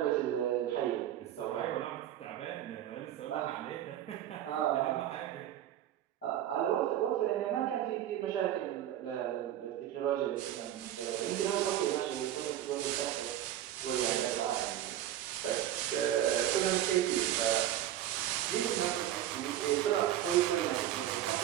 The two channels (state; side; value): quieter; left; 12.2 dB